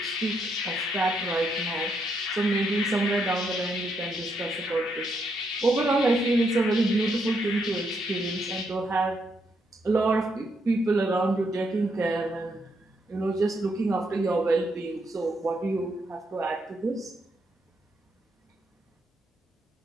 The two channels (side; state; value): both; normal; correlation 0.77